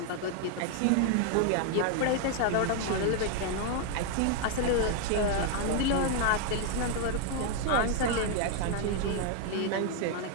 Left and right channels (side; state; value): both; different; correlation 0.00